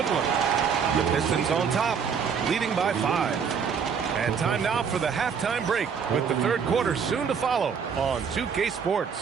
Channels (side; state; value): left; quieter; 6.6 dB